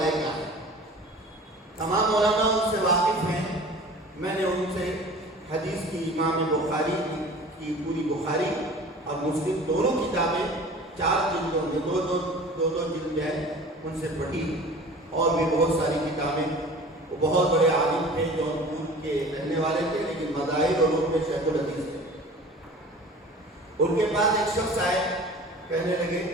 کا ہے۔ تمام مولانا ان سے واقف ہیں، میں نے ان سے حدیث کی امام بخاری کی پوری بخاری اور مسلم دونوں کتابیں 4 جلدوں میں دو جلد ہیں ان سے پڑھی، اور بھی بہت ساری کتابیں۔ وہ بہت بڑے عالم تھے، جونپور کے رہنے والے تھے، لیکن مذاہب اور علوم میں شیخ الحدیث تھے۔ ان کے پاس ایک شخص آئے، کہنے لگے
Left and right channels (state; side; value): normal; both; correlation 0.42